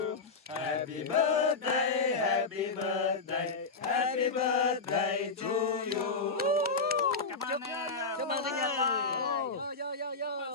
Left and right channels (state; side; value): quieter; right; 4.1 dB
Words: Happy birthday, happy birthday, happy birthday to you. Cảm ơn nha. Chúc mừng sinh nhật. Chúc